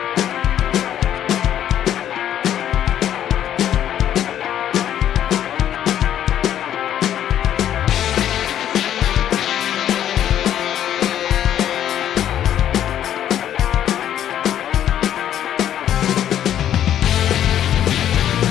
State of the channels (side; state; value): right; quieter; 10.7 dB